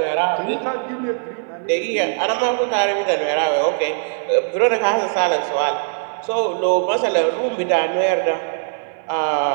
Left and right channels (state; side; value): silent; left; 59 dB below the other